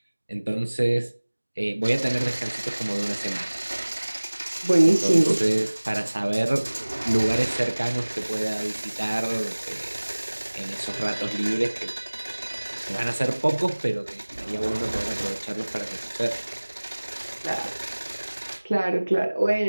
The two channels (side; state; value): both; inverted; correlation -1.00